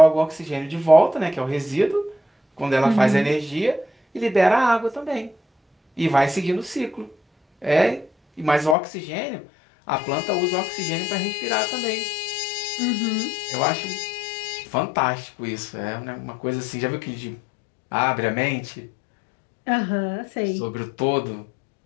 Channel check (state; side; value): drops out; right; at 8.8 s